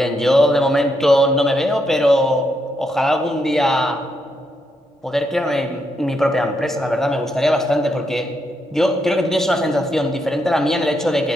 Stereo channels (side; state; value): both; normal; correlation 0.79